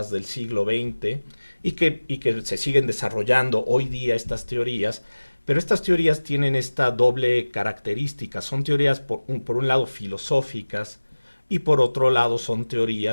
del siglo XX, y que se siguen desarrollando hoy día estas teorías, pero estas teorías tienen esta doble característica. Son teorías, por un lado, filosóficas, y por otro lado son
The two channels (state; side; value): inverted; both; correlation -1.00